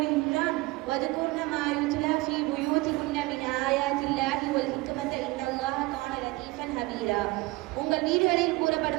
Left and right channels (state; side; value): quieter; left; 21.9 dB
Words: வதுகுர்ன மா யுத்லா ஃபீ புயூதிகுன்ன மின் ஆயாத்தில்லாஹி வல் ஹிக்மத இன்னல்லாஹ கான லதீஃபன் ஹபீரா. உங்கள் வீடுகளில்